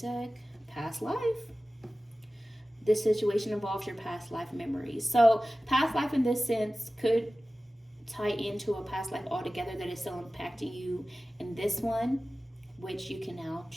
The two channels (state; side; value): normal; both; correlation 0.96